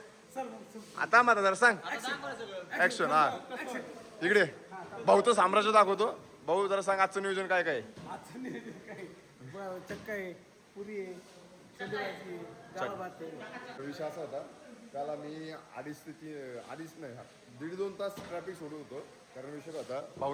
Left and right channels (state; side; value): identical; both; correlation 1.00